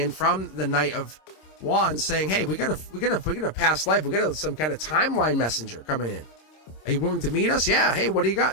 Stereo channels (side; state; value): right; late; 26 ms